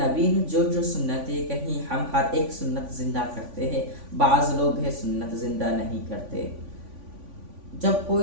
نے جو سنتیں کہیں ہم ہر ایک سنت زندہ کرتے ہیں، بعض لوگ ہے سنت زندہ نہیں کرتے۔ جب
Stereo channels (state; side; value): late; left; 3.5 ms